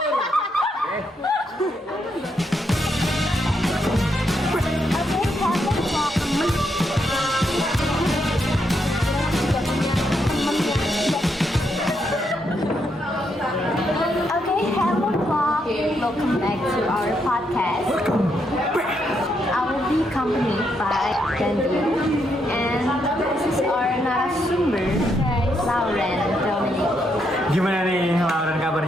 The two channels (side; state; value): both; normal; correlation 0.78